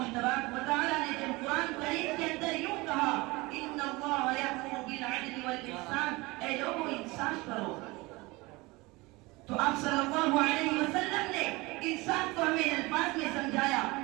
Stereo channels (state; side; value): quieter; left; 23.1 dB